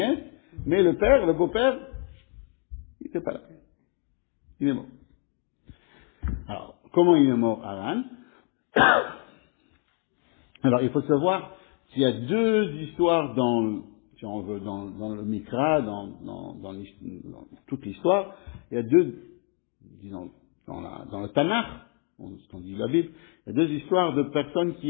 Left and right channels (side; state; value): right; quieter; 37.2 dB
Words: mais le beau-père, il n'était pas là. Il est mort. Alors, comment il est mort, Haran? Alors, il faut savoir qu'il y a 2 histoires si on veut, dans le Mikra, dans toute l'histoire. Il y a 2, disons, dans le Tanakh, ce qu'on dit la Bible, il y a 2 histoires de personnes